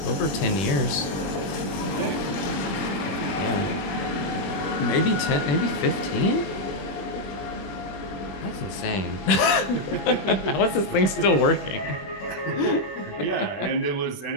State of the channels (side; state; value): right; late; 21 ms